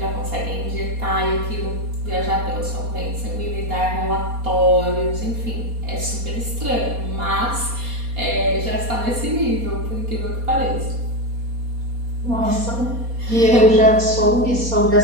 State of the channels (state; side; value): late; left; 4.2 ms